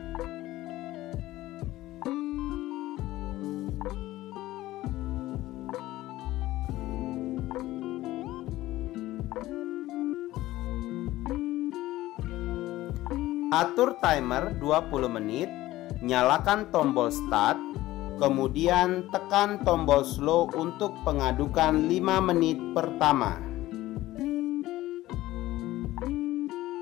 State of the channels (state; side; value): quieter; right; 16.4 dB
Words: Atur timer 20 menit, nyalakan tombol start, kemudian tekan tombol slow untuk pengadukan 5 menit pertama.